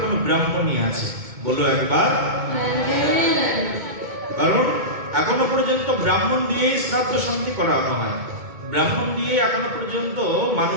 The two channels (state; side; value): late; left; 2.2 ms